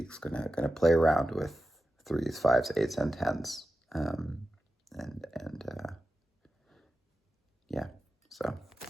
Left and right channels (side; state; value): both; normal; correlation 0.92